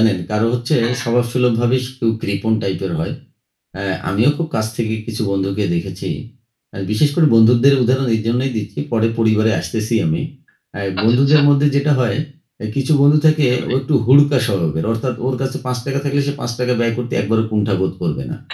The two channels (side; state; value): both; identical; correlation 1.00